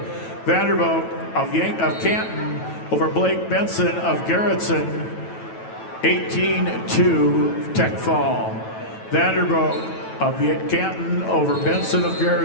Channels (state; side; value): late; right; 9.1 ms